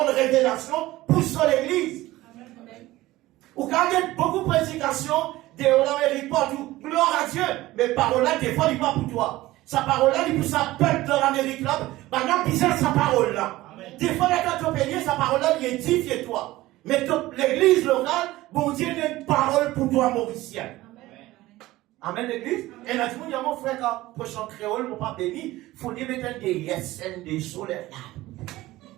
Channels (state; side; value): quieter; left; 17.5 dB